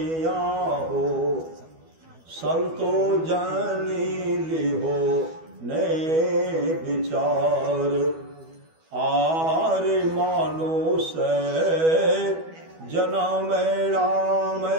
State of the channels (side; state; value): left; late; 12 ms